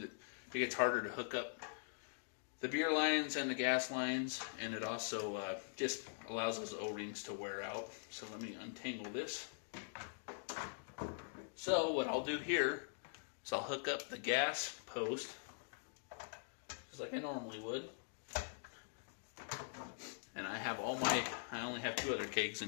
it gets harder to hook up the beer lines and the gas lines, and it also just allows those O-rings to wear out. So let me untangle this. So what I'll do here is I'll hook up the gas post just like I normally would. And I have I only have 2 other kegs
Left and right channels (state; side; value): silent; right; digital silence